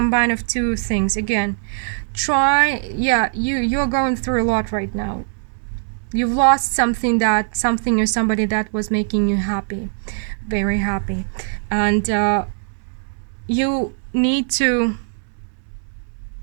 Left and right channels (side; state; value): left; silent; 65 dB below the other